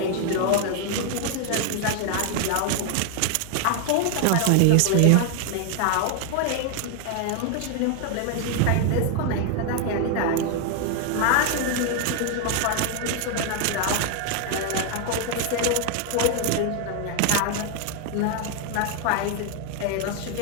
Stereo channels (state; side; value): different; both; correlation 0.01